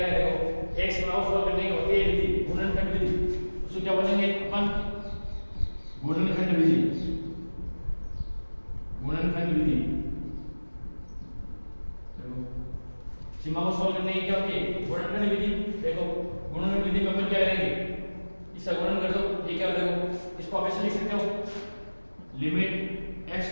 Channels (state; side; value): inverted; both; correlation -1.00